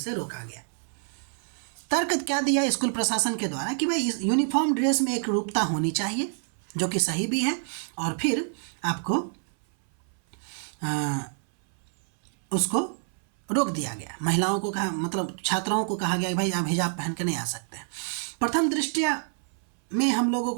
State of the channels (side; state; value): left; silent; 60 dB below the other